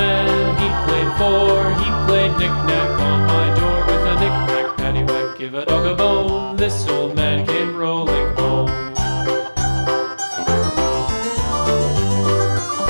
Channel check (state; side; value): inverted; both; correlation -1.00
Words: he played four. He played knick-knack on my door with a knick-knack, paddywhack, give a dog a bone. This old man came rolling home.